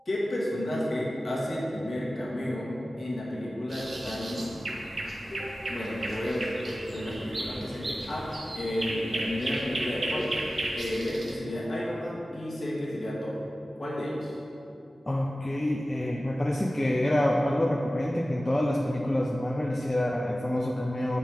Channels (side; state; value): both; normal; correlation 0.95